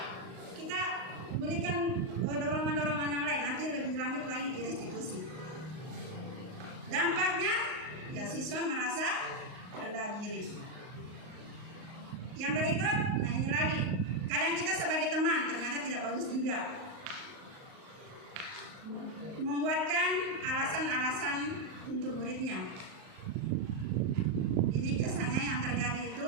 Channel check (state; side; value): late; left; 38 ms